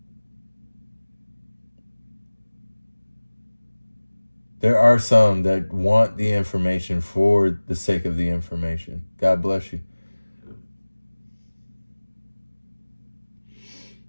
There are some that want the information for the sake of the information. God bless you.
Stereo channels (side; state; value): both; inverted; correlation -1.00